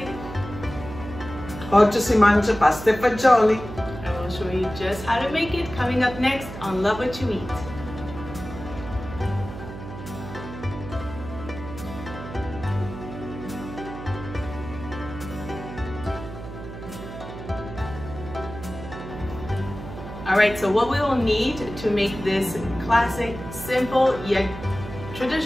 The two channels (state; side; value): noise; right; hum, 11 dB below the sound